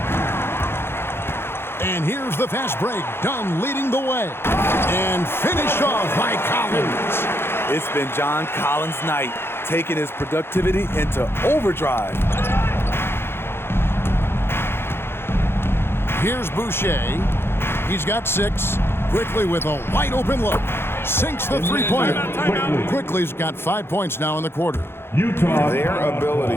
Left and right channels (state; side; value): late; right; 0.11 ms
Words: And here's the fast break. Dunn leading the way. And finished off by Collins. It's been John Collins' night, taking his productivity into overdrive. Here's Boucher. He's got 6. Quickly with a wide open look. Sinks the three-pointer. Quickly's got 5 points now in the quarter. Utah. Their